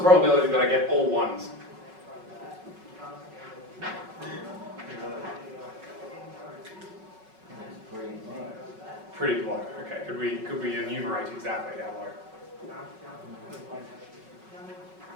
probability that I get all ones? Pretty low. Okay, could we enumerate exactly how low?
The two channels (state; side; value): late; left; 5.4 ms